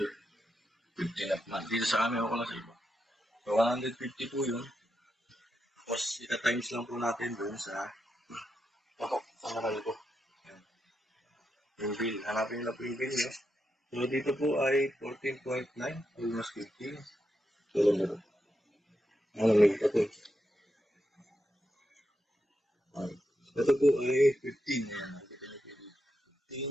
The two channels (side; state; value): both; normal; correlation 0.85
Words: yun. 15 at month. Dito sa amin, ako lang sa iba. So, 150 po yun. Tapos, ita-times lang po natin doon sa patok, sa naral ko. ating bill. Hanapin nyo na po yung bill nyo. So, dito po ay 14.9, almost 15. So, lang na ito. May ito po. Ito po ay 15. Ayan, nakikita nyo po dito.